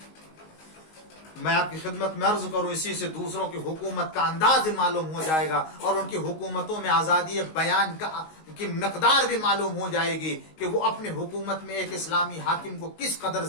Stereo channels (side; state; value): right; late; 19 ms